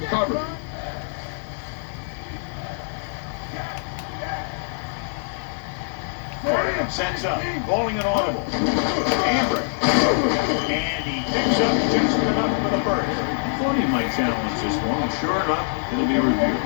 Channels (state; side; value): silent; right; 63 dB below the other